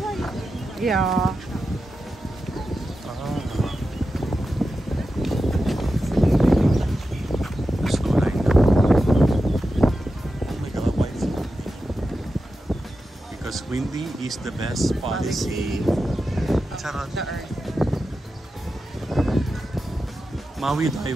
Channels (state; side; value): normal; both; correlation 0.91